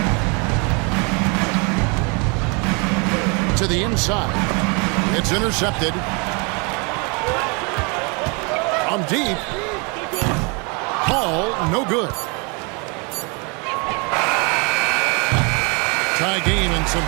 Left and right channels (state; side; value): quieter; left; 32.2 dB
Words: To the inside. It's intercepted. From deep. Ball, no good. Tie game and some